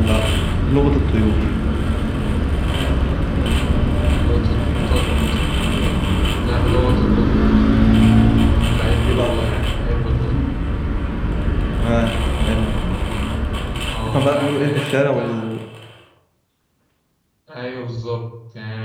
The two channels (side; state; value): both; identical; correlation 1.00